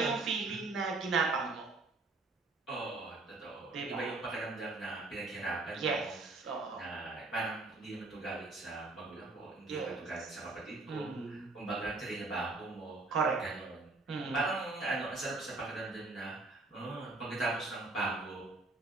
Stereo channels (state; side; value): quieter; left; 3.4 dB